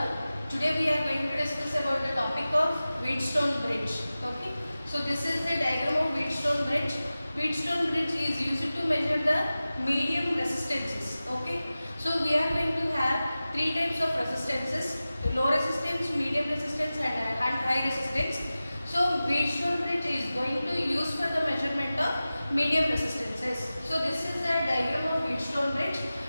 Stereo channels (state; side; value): inverted; both; correlation -0.96